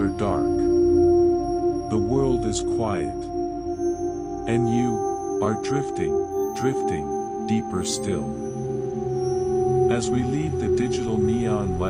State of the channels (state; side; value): identical; both; correlation 1.00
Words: dark. The world is quiet. And you are drifting deeper still. As we leave the digital neon